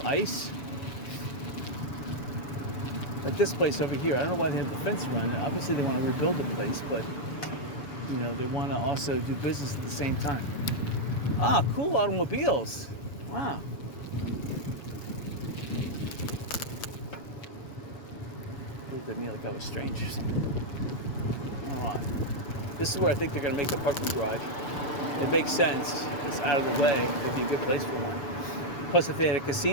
ice. At this place over here, I don't know why they have the fence around it. Obviously they want to rebuild the place, but you know, they want to also do business at the same time. Ah, cool automobiles. Wow. Looked at me like that was strange or something. Alright. This is where I think they're going to make the parking garage. It makes sense. It's out of the way. It'd be a good place for one. Plus, if they had a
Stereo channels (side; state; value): right; late; 7.0 ms